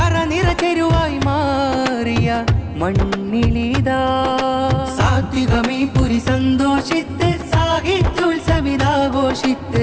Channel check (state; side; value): identical; both; correlation 1.00